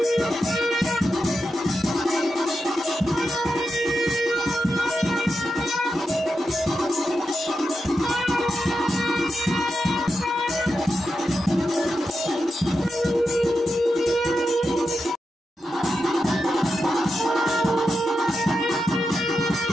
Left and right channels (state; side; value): normal; both; correlation 0.88